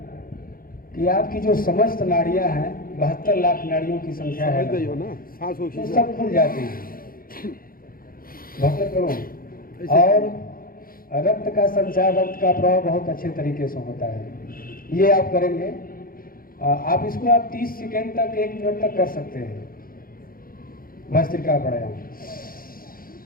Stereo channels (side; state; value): right; late; 0.42 ms